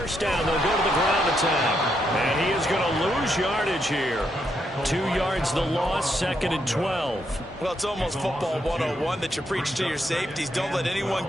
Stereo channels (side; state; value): both; normal; correlation 0.78